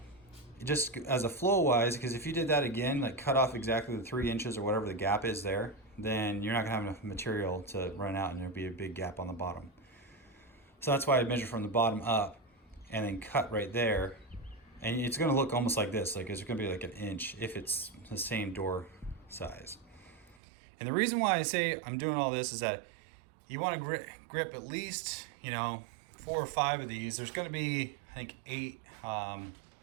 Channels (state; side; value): drops out; left; at 20.4 s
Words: just as a flow wise, because if you did that again, like cut off exactly the 3 inches or whatever the gap is there, then you're not gonna have enough material to run out and there'll be a big gap on the bottom. So that's why I measure from the bottom up and then cut right there And it's going to look almost like this, like it's going to be like an inch if it's the same door size. And the reason why I say I'm doing all this is that you want to grip at least, you know, 4 or 5 of these. There's going to be, I think, 8, 1,